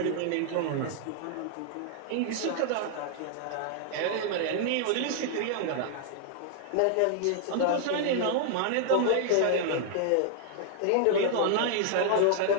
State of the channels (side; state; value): both; different; correlation 0.00